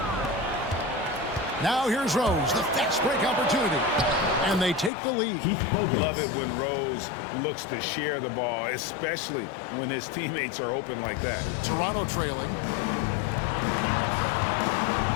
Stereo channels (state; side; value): drops out; right; at 4.9 s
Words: Now here's Rose, the fast break opportunity. And they take the lead. Love it when Rose looks to share the ball, especially when his teammates are open like that. Toronto trailing.